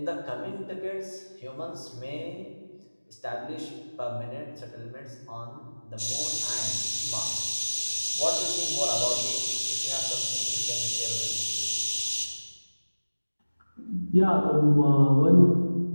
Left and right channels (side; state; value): both; inverted; correlation -1.00